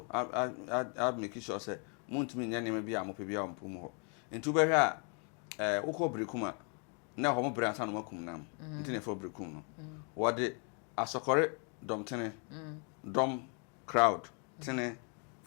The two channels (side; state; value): right; quieter; 38.4 dB